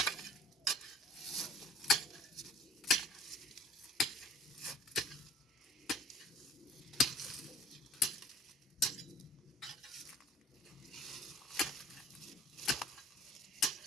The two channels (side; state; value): both; normal; correlation 0.52